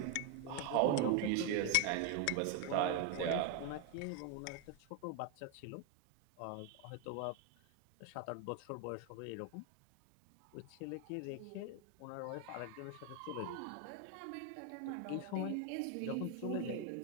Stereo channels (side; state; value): both; different; correlation 0.01